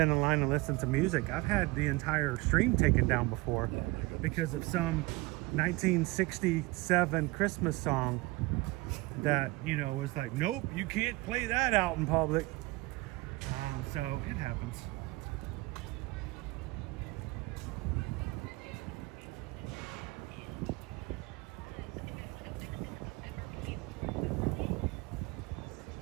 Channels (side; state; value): left; quieter; 22.3 dB